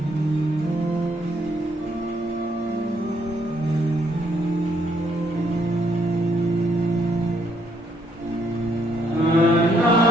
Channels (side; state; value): both; normal; correlation 0.70